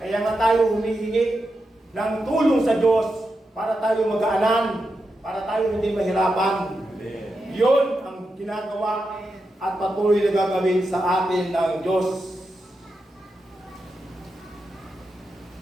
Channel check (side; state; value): both; normal; correlation 0.87